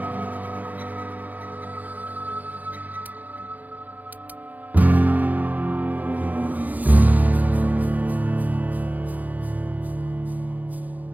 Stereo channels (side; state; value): left; late; 0.081 ms